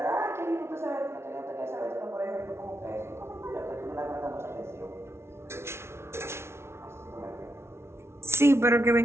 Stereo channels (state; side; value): late; left; 0.12 ms